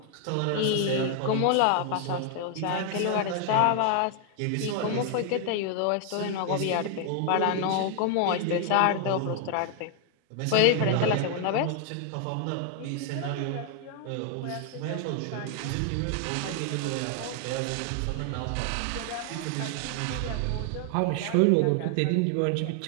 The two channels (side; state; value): both; different; correlation 0.00